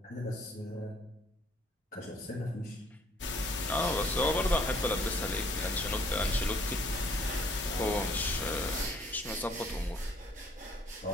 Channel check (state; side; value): normal; both; correlation 0.61